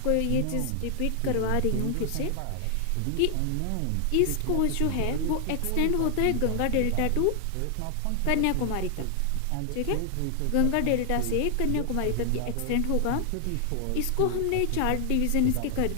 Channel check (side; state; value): both; different; correlation 0.00